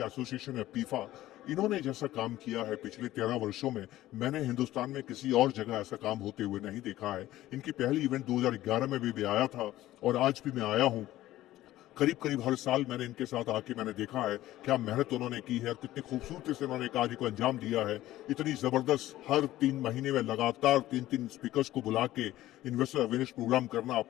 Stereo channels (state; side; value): quieter; right; 15.2 dB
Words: एसोसिएशन है पीफा, इन्होंने जैसा काम किया है पिछले 13 वर्षों में, मैंने हिंदुस्तान में किसी और जगह ऐसा काम होते हुए नहीं देखा है। इनकी पहली इवेंट 2011 में भी आया था, और आज भी मैं आया हूं। करीब करीब हर साल मैंने इनके साथ आके मैंने देखा है क्या मेहनत उन्होंने की है और कितनी खूबसूरती से उन्होंने कार्य को अंजाम दिया है। इतनी जबरदस्त हर 3 महीने में लगातार 3-3 स्पीकर्स को बुला के इन्वेस्टर अवेयरनेस प्रोग्राम करना